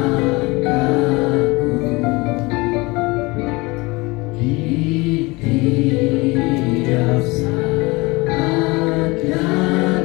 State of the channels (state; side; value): quieter; right; 24.0 dB